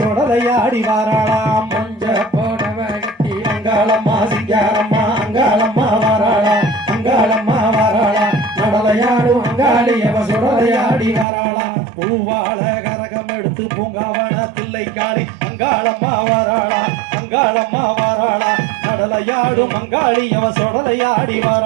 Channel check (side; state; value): left; drops out; at 11.2 s